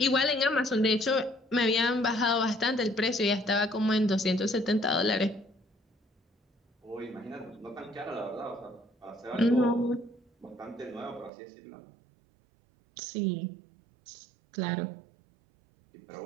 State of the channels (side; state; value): left; drops out; at 11.3 s